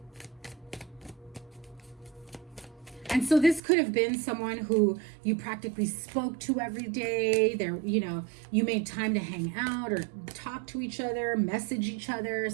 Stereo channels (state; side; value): drops out; left; at 3.6 s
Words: And so this could have been someone who you practically spoke to every day. There, you know, you made time to hang out or talk to each other, message each other,